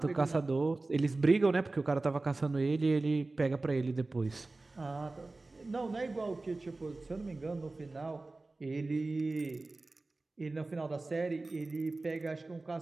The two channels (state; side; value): quieter; left; 3.3 dB